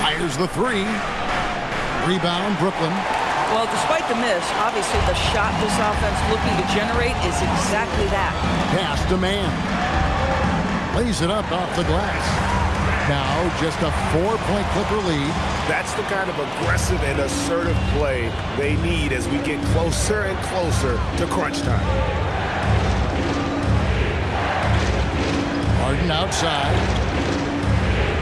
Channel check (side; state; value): both; identical; correlation 1.00